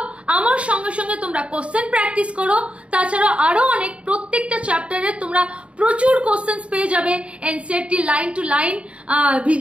আমার সঙ্গে সঙ্গে তোমরা কোশ্চেন প্র্যাকটিস করো। তাছাড়া আরো অনেক প্রত্যেকটা চ্যাপ্টারে তোমরা প্রচুর কোশ্চেন পেয়ে যাবে, NCERT line to line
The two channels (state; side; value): late; left; 0.061 ms